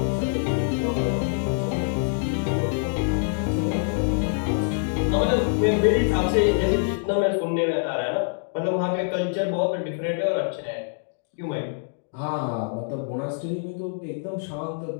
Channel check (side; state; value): right; silent; digital silence